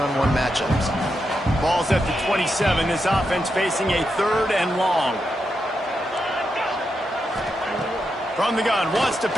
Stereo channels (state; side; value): normal; both; correlation 0.85